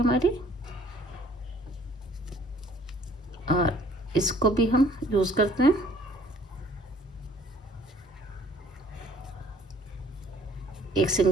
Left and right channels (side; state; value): both; normal; correlation 0.57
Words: हमारी और इसको भी हम यूज करते हैं। एक